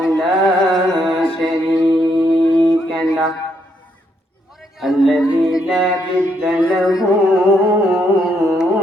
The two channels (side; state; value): both; normal; correlation 0.75